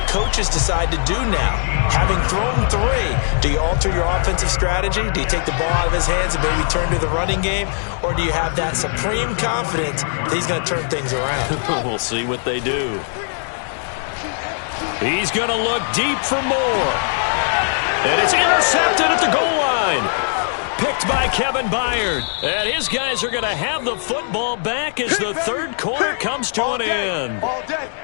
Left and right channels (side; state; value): right; silent; digital silence